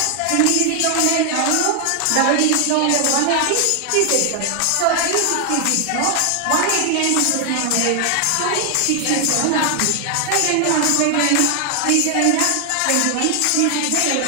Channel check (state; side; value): different; both; correlation 0.00